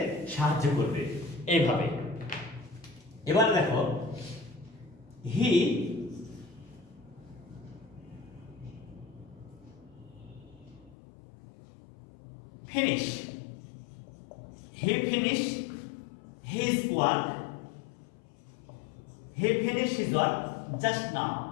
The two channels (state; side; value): drops out; right; at 11.0 s